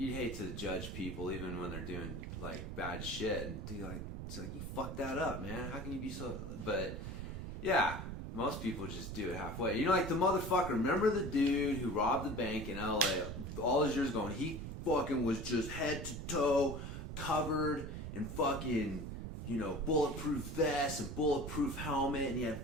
hate to judge people even when they're doing, like, bad shit. And, dude, like, it's like, you fucked that up, man. How can you be so... But, yeah, most people just do it halfway. Like the motherfucker, remember the dude who robbed the bank in L.A. all his years ago, and he fucking was just head to toe covered in fucking, bulletproof vest and bulletproof helmet, and he had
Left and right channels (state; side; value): noise; right; rumble, 6 dB below the sound